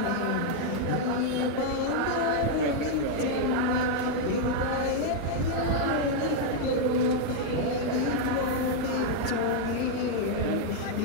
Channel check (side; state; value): both; different; correlation -0.01